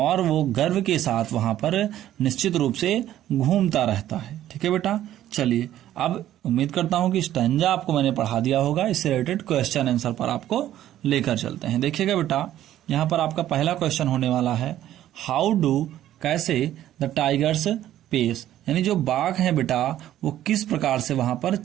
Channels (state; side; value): quieter; left; 12.6 dB